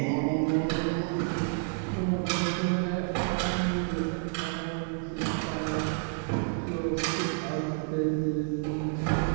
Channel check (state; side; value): silent; left; 58 dB below the other